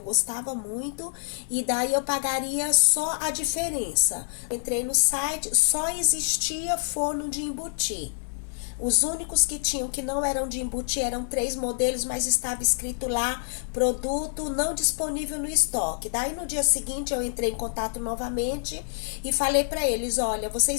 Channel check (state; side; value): silent; right; 60 dB below the other